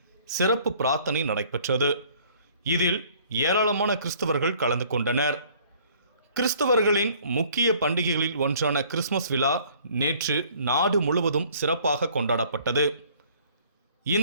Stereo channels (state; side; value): inverted; both; correlation -0.56